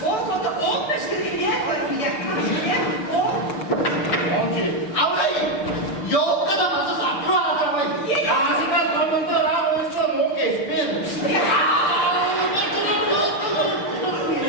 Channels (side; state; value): right; late; 6.8 ms